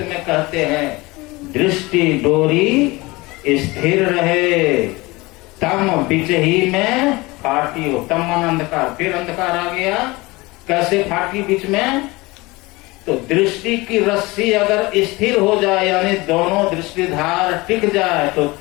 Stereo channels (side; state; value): right; quieter; 22.7 dB